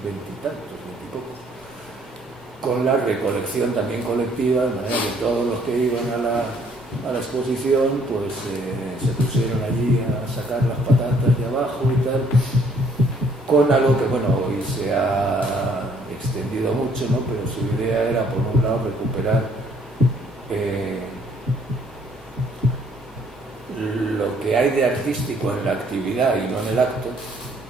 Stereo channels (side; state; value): both; normal; correlation 0.63